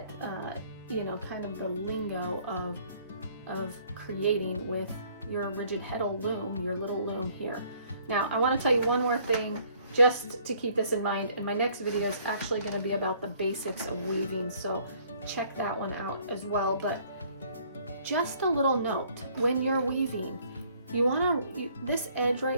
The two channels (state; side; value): inverted; both; correlation -0.60